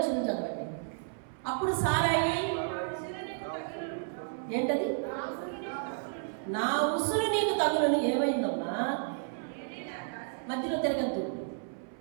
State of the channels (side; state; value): left; silent; 56 dB below the other